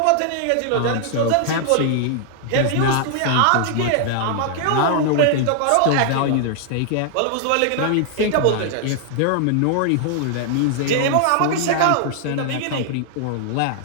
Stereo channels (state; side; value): different; both; correlation 0.00